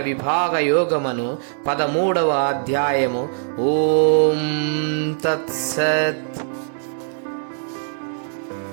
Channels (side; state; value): left; silent; digital silence